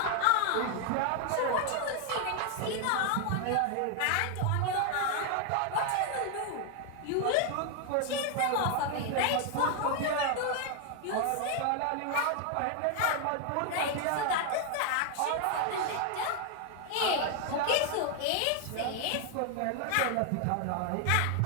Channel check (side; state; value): both; different; correlation 0.00